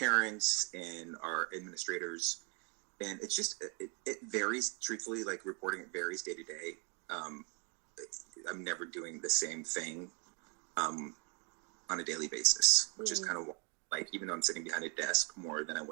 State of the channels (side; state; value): left; quieter; 35.2 dB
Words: and our administrators. And it's just, it varies, truthfully, like reporting, it varies day to day. I'm never doing the same thing on a daily basis, which is kind of like, even though I'm sitting behind a desk more than I